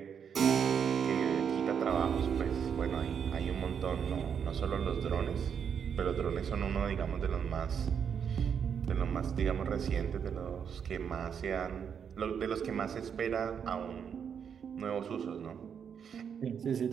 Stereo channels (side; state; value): left; quieter; 7.5 dB